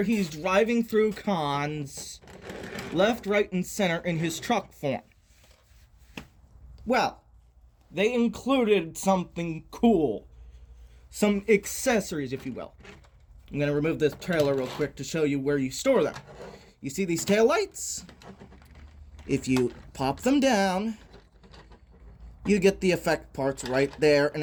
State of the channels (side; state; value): both; identical; correlation 1.00